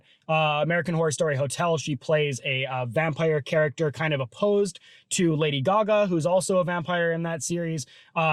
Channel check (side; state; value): both; identical; correlation 1.00